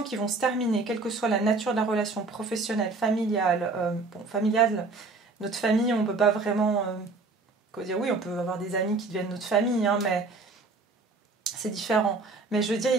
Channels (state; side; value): quieter; left; 3.7 dB